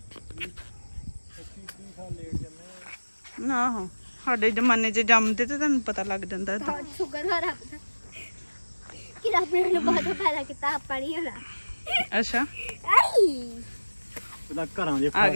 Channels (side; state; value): both; inverted; correlation -1.00